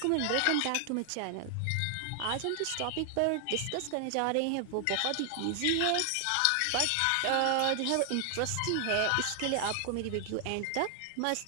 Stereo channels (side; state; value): both; different; correlation 0.00